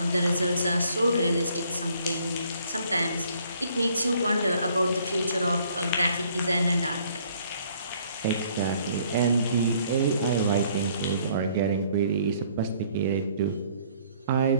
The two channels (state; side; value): inverted; both; correlation -0.62